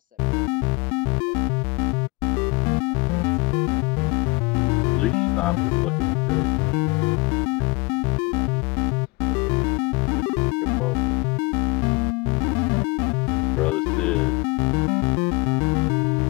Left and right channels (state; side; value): quieter; right; 26.3 dB